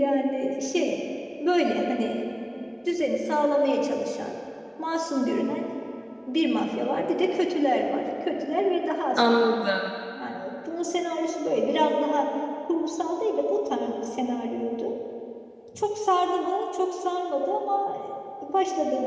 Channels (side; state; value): both; identical; correlation 1.00